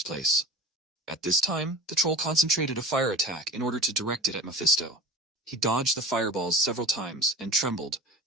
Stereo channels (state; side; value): normal; both; correlation 0.35